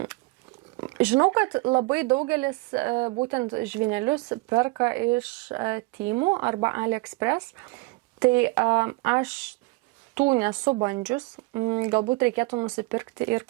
Žinau, kad labai daugelis būtent žvynelius perka iš Temu arba AliExpress, tai aš tų nesu bandžius, galbūt reikėtų nusipirkti ir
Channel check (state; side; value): quieter; left; 24.5 dB